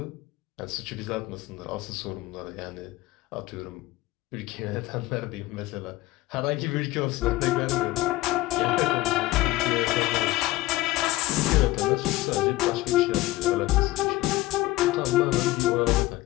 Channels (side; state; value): right; quieter; 17.9 dB